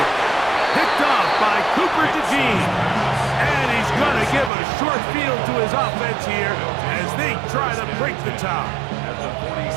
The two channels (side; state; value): left; drops out; at 4.5 s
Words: off by Cooper DeJean. And he's going to give a short field to his offense here as they try to break the tie.